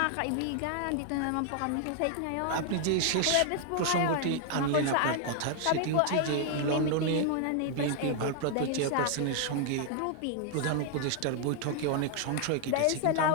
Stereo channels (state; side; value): different; both; correlation 0.00